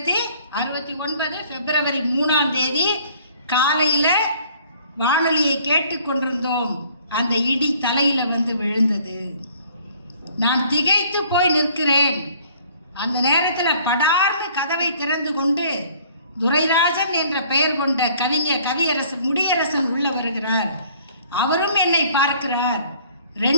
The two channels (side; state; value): both; inverted; correlation -0.56